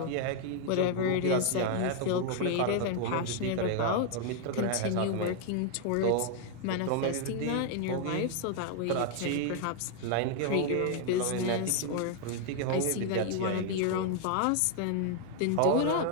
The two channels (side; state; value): both; different; correlation 0.00